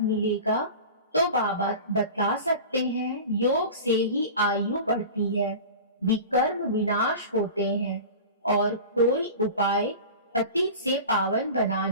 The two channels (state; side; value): inverted; both; correlation -0.35